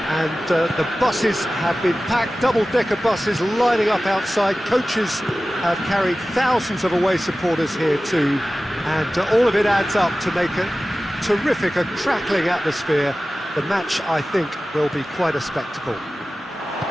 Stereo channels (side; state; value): both; normal; correlation 0.96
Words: And the buses have been packed, double-decker buses lining up outside. Coaches have carried thousands of away supporters here too. And all of it adds up to make a terrific, a crackling atmosphere. The match, I think, will be quite a spectacle.